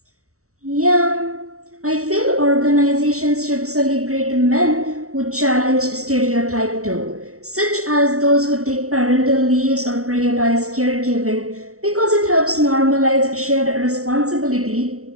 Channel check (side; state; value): left; late; 0.64 ms